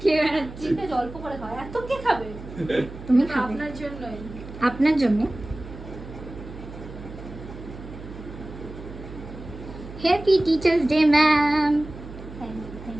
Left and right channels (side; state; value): right; noise; hum, 13 dB below the sound